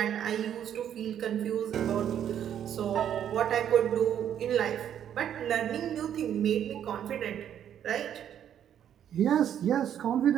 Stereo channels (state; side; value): quieter; left; 9.8 dB